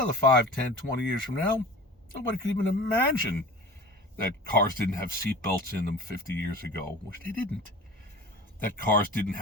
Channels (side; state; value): both; normal; correlation 0.38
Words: 5, 10, 20 years from now, Nobody could even imagine that cars didn't have seatbelts in them 50 years ago, which they didn't. That cars didn't